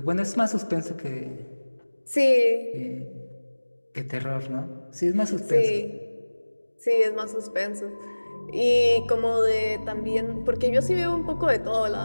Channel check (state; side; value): inverted; both; correlation -1.00